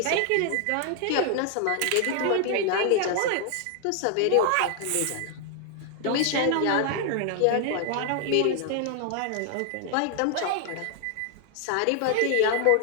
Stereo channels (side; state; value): both; different; correlation 0.00